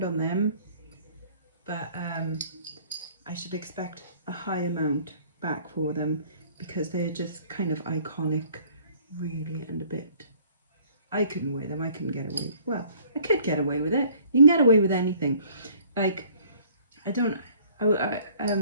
on them, but I should expect a high amount back for them because they're just kind of iconic, really, and a bit. I couldn't wear them. I couldn't get away. Well, I could get away with it. You can get away with anything. Like, a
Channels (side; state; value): both; inverted; correlation -0.56